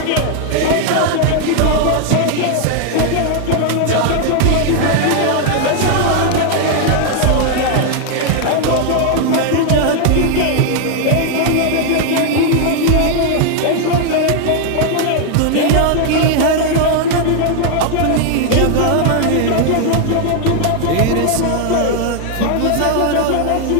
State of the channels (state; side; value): different; both; correlation 0.00